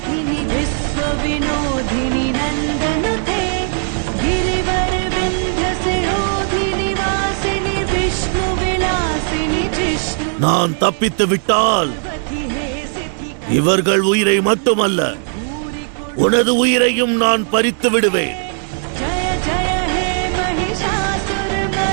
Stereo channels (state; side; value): silent; left; 68 dB below the other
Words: நான் தப்பித்து விட்டால் இவர்கள் உயிரை மட்டுமல்ல, உனது உயிரையும் நான் பறித்து விடுவேன்.